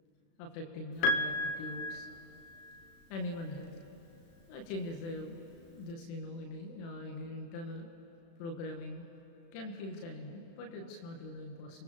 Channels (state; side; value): late; right; 36 ms